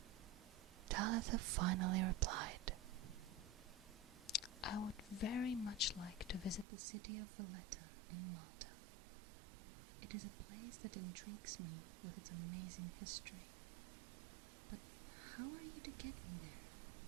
Talitha finally replied, "I would very much like to visit the city of Valletta in Malta. It is a place that intrigues me with its amazing history. But how are you to get me there?"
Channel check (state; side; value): drops out; left; at 6.7 s